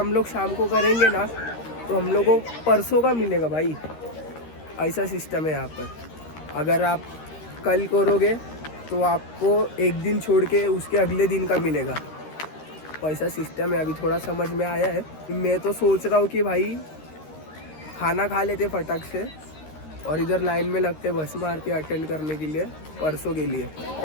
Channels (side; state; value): right; late; 13 ms